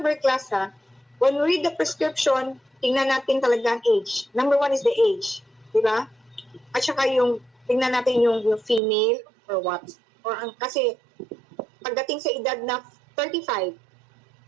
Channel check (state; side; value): drops out; left; at 8.8 s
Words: class ha, when we read the prescription, tingnan natin talaga ang age. Number 1 is the age. Diba? At saka tingnan natin yung female or what. Kasi, pagdating sa edad na 35,